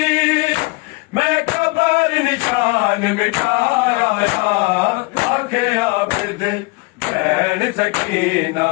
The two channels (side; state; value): right; quieter; 26.6 dB